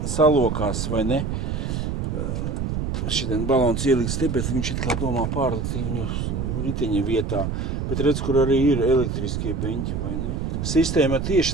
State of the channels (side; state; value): right; noise; rumble, 2 dB below the sound